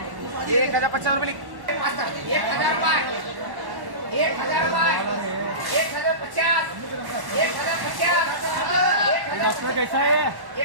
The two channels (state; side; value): late; left; 1.1 ms